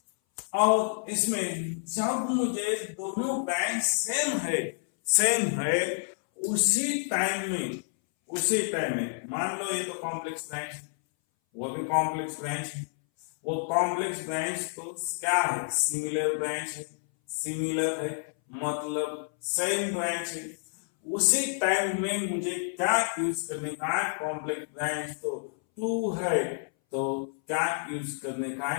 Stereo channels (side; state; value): right; silent; 58 dB below the other